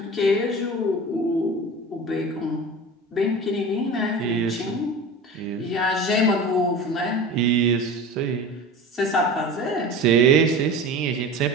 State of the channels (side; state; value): both; normal; correlation 0.33